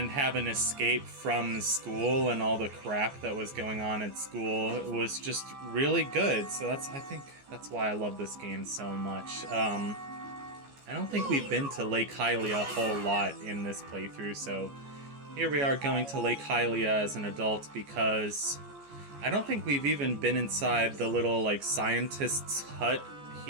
have an escape from school and all the crap that was going on at school was just really good. So I think that's why I love this game so much. I don't think we've been to Lake Hylia a whole lot in this playthrough, so here we are going to Lake Hylia as an adult because I don't think we've even been inside the little, scientist's hut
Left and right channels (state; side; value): late; left; 14 ms